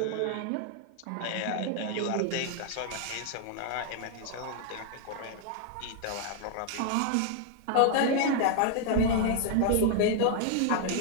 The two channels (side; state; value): both; different; correlation 0.00